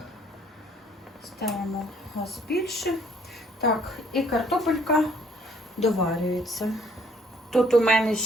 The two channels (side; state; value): both; normal; correlation 0.62